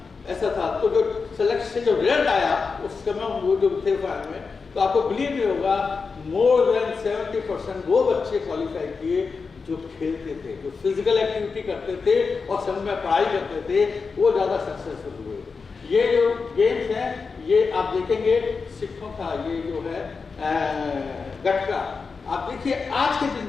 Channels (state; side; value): quieter; right; 4.8 dB